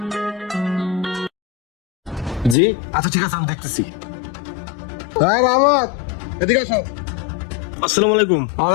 জি আচ্ছা, ঠিক আছে, আমি দেখতেছি। হ্যাঁ রহমত, এদিকে আসো। আসসালামু আলাইকুম।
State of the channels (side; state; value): right; drops out; at 2.6 s